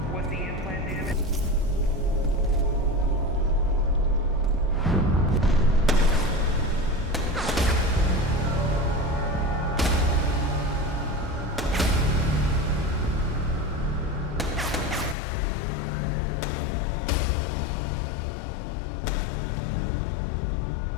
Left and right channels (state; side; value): drops out; right; at 15.2 s